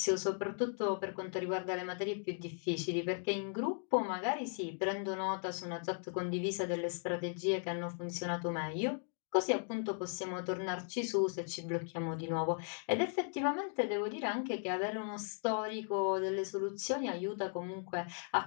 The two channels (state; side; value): silent; right; 53 dB below the other